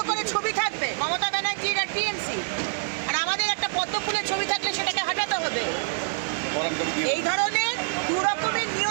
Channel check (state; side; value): silent; left; 61 dB below the other